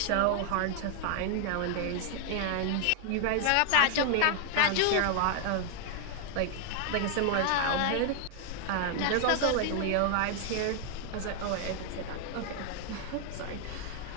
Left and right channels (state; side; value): different; both; correlation 0.00